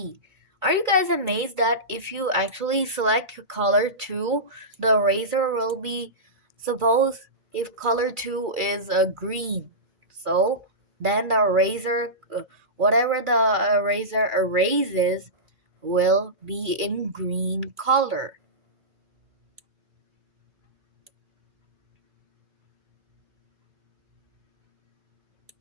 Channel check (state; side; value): late; left; 2.3 ms